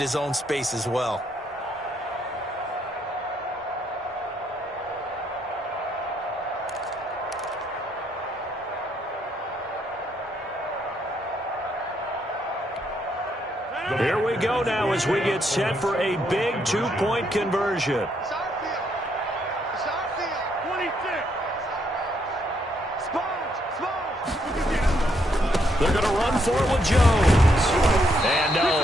own space as well. Here we go now as we get set for a big two-point conversion. It's our field. It's our field. 26. Sponge. They're going to run for it with Jones. And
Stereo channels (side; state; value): both; normal; correlation 0.74